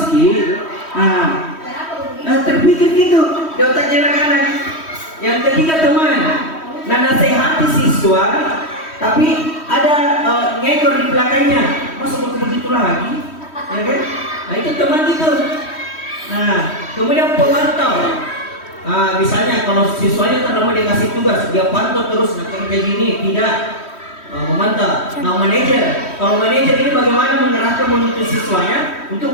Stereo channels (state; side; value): late; right; 3.1 ms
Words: Ki. Nah, terpikir gitu di otaknya anak-anak. Yang ketiga teman. Nah, nasihati siswa, tapi ada ngekor di belakangnya. Masa mau begitu lagi? Ya kan? Nah, itu teman gitu. Nah, kemudian pemantau. Nah, misalnya kalau siswanya terlalu dikasih tugas, dia pantau terus kayak gini, tidak memantau. Nah, manajer, kalau manajer ini bagaimana mengerahkan menuntut siswanya